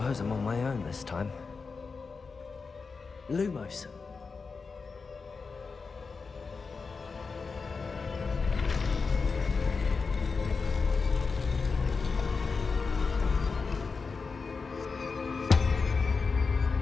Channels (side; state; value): right; quieter; 4.7 dB